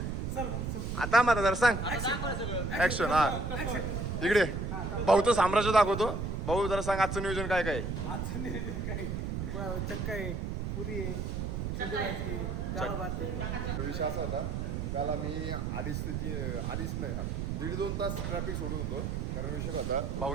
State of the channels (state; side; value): noise; right; rumble, 2 dB below the sound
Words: आता मला जरा सांग. ऍक्शन. हा इकडे भाऊचं साम्राज्य दाखवतो. भाऊ जरा सांग आजचं नियोजन काय काय. आजचं नियोजन काय? चक्का आहे, पुरी आहे, चंद्रभाजी, डाळ भात आहे. विषय असा होता काल आम्ही अडीच नाही 1.5-2 तास ट्रॅफिक सोडत होतो. कारण विषय होता